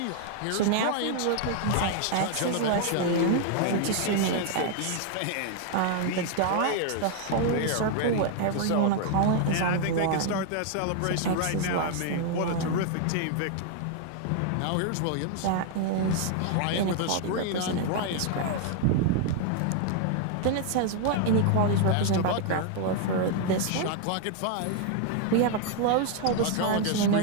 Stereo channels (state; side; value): different; both; correlation 0.00